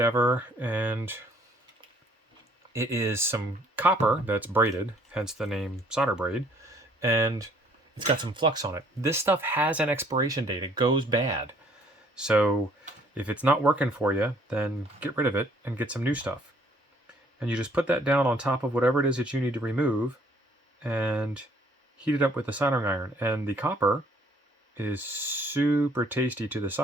and it is some copper that's braided, hence the name solder braid, and it's got some flux on it. This stuff has an expiration date. It goes bad. So if it's not working for you, then get rid of it and get some new stuff. And you just put that down on top of whatever it is that you need to remove and heat it up with the soldering iron. And the copper is super tasty to the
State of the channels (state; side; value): normal; both; correlation 0.61